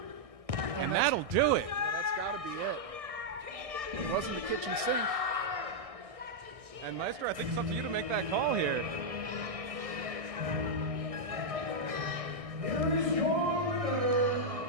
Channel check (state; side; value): late; left; 1.6 ms